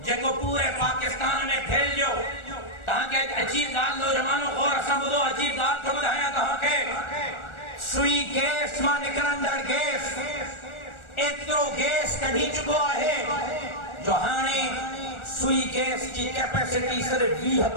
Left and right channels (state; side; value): late; right; 1.4 ms